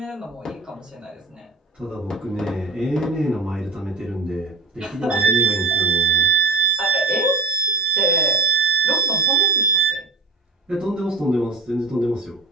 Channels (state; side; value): quieter; left; 3.8 dB